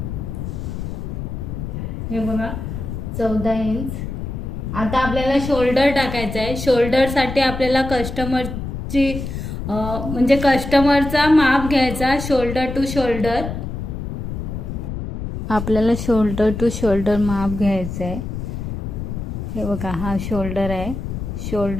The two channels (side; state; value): left; noise; rumble, 6 dB below the sound